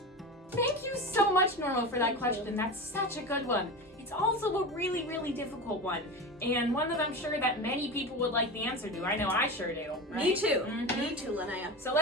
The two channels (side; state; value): both; normal; correlation 0.26